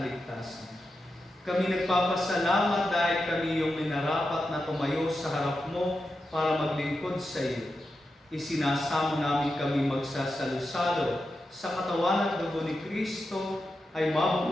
Kami nagpapasalamat dahil kami yung minarapat na tumayo sa harap mo para maglingkod sa iyo. Isinasamo namin kami magsasalo-salo sa katawan at dugo ni Kristo ay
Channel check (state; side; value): normal; both; correlation 0.89